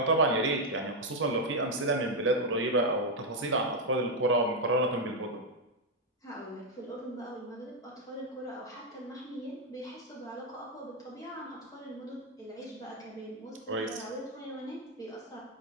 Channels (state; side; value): normal; both; correlation 0.02